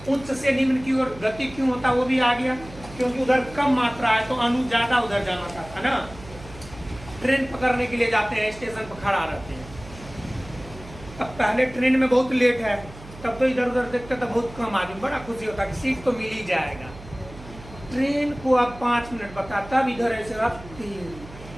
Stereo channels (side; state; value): right; noise; hum, 17 dB below the sound